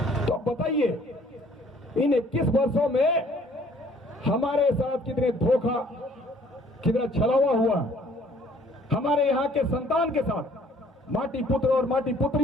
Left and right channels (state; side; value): normal; both; correlation 0.58